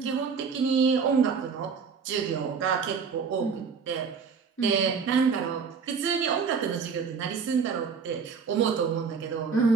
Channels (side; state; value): left; quieter; 5.7 dB